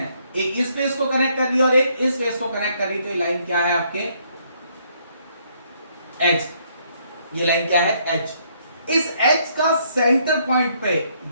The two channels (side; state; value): both; inverted; correlation -0.69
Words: एक इस फेस को कनेक्ट कर रही है और एक इस फेस को कनेक्ट कर रही है, तो ये लाइन क्या है आपके? एज। ये लाइन क्या है? एज। इस एज का सेंटर पॉइंट पे